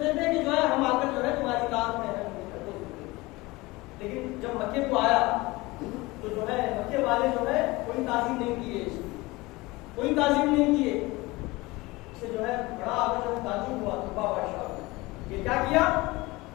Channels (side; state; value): right; quieter; 21.9 dB